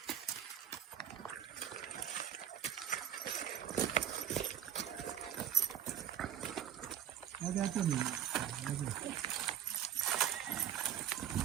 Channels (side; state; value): left; quieter; 10.0 dB